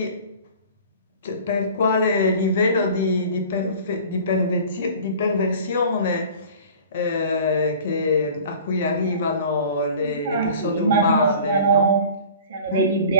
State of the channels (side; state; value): both; inverted; correlation -0.44